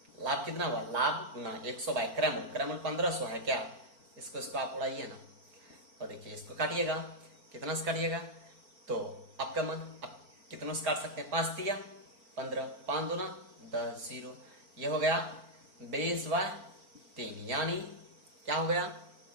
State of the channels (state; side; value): late; left; 4.4 ms